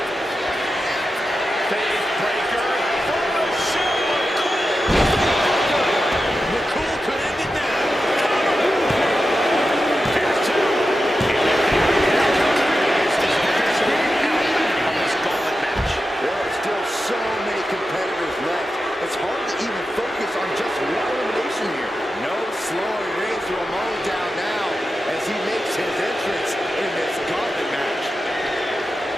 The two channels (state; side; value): normal; both; correlation 0.91